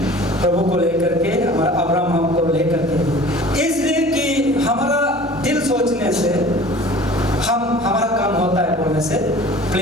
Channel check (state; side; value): normal; both; correlation 0.44